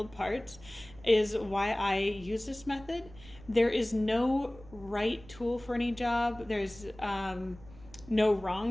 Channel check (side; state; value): right; noise; rumble, 20 dB below the sound